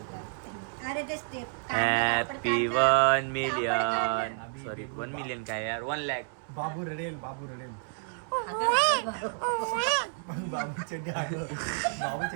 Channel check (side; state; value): left; silent; digital silence